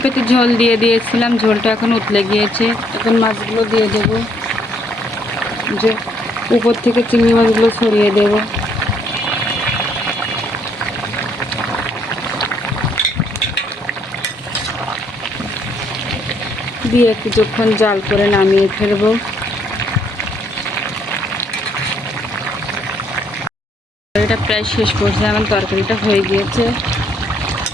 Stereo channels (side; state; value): both; normal; correlation 0.69